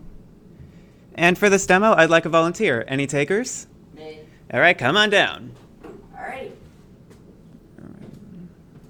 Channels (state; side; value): identical; both; correlation 1.00